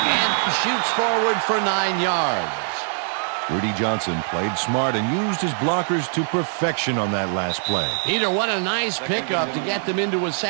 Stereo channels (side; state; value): left; silent; 60 dB below the other